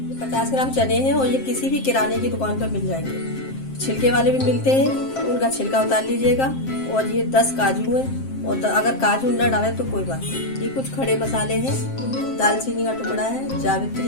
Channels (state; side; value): late; right; 7.6 ms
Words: 50 ग्राम चने हैं और ये किसी भी किराने की दुकान पर मिल जाएंगे। छिलके वाले भी मिलते हैं, उनका छिलका उतार लीजिएगा। और ये 10 काजू है और अगर काजू न डालें तो कोई बात नहीं। ये कुछ खड़े मसाले हैं, दालचीनी का टुकड़ा है,